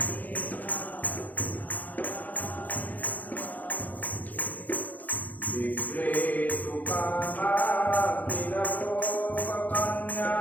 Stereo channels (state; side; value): late; right; 0.081 ms